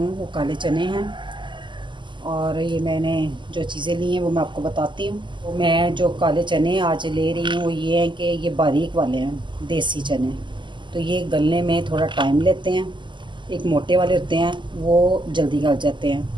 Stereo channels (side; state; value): left; late; 0.23 ms